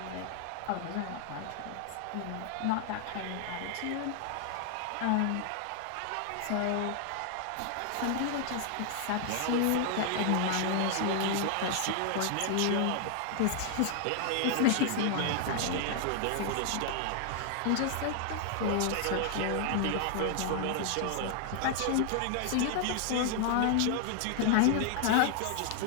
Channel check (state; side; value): different; both; correlation 0.00